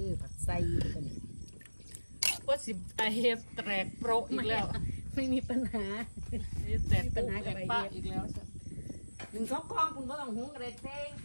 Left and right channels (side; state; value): both; inverted; correlation -1.00